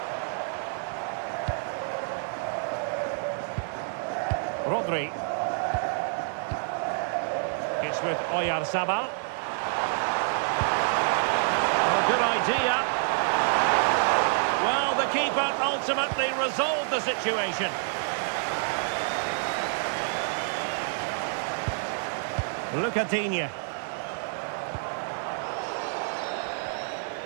Rodri. It's with Oyarzabal. Oh, good idea. Well, the keeper ultimately resolved the situation. Lucadinha.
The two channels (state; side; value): silent; left; 56 dB below the other